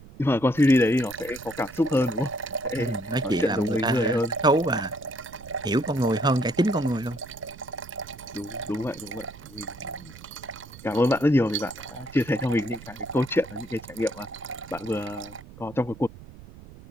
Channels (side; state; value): right; noise; rumble, 18 dB below the sound